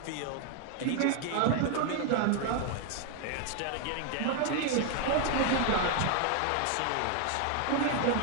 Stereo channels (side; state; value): both; different; correlation 0.01